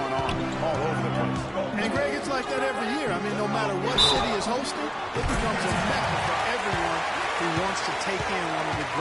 on all over the place. And, Greg, it's like that every year. I mean, no matter what city is hosting, it becomes a mecca for everyone who wants to take in one of the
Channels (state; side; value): identical; both; correlation 1.00